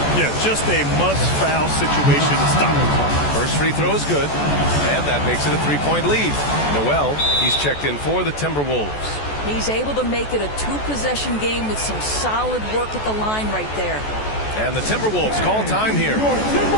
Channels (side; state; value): right; late; 14 ms